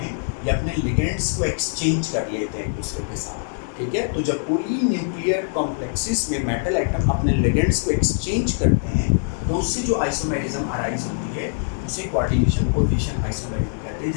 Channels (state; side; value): silent; right; 57 dB below the other